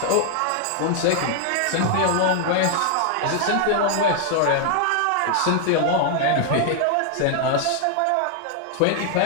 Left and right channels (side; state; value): both; different; correlation 0.00